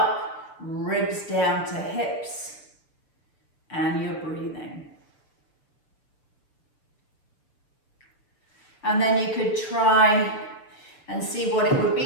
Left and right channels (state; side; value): late; right; 6.7 ms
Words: ribs down to hips, and you're breathing. And then you could try and see what it would